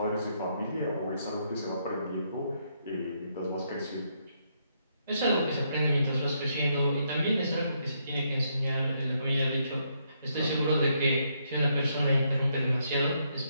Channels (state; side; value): inverted; both; correlation -0.76